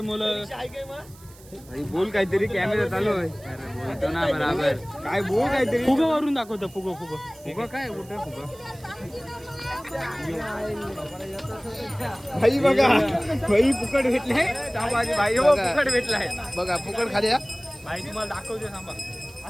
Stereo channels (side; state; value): right; noise; hiss, 23 dB below the sound